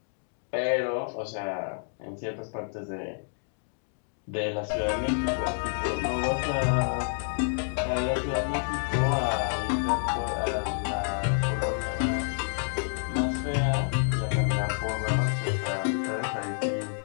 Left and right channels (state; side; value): silent; right; digital silence